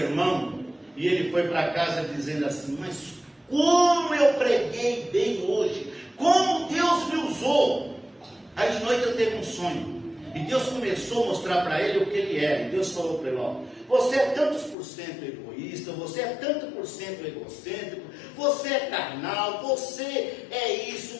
e ele foi para casa dizendo assim, mas como eu preguei bem hoje, como Deus me usou. Aí de noite ele teve um sonho, e Deus começou a mostrar para ele o que ele era, e Deus falou para ele, ó, você é tantos por cento egoísta, você é tanto por cento egocêntrico, você é carnal, você é isso,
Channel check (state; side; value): drops out; right; at 14.8 s